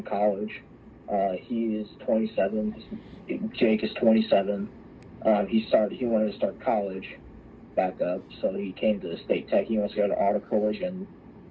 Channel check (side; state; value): both; identical; correlation 1.00